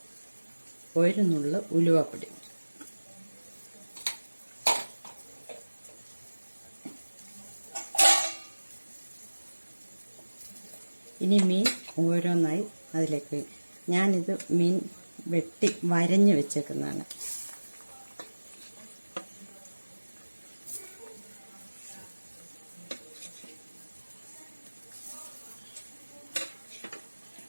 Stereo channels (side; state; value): both; inverted; correlation -1.00